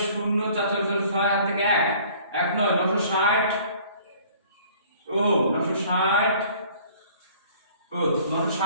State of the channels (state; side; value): inverted; both; correlation -0.53